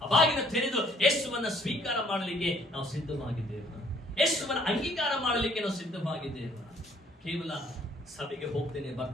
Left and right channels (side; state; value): both; normal; correlation 0.61